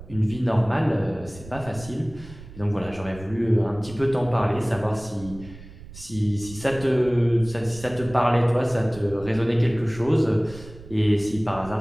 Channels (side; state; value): right; noise; rumble, 17 dB below the sound